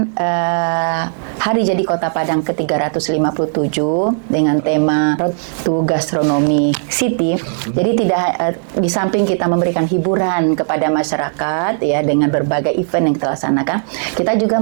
Hari Jadi Kota Padang ke-357 dengan tema Road to Gastronomy City. Jadi tidak di samping kita memberikan hiburan kepada masyarakat ya dengan berbagai event yang kita laksanakan, kita juga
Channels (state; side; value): silent; left; digital silence